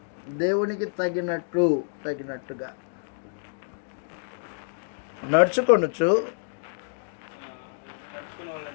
దేవునికి తగినట్టుగా నడుచుకొనుచు,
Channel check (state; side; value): silent; right; digital silence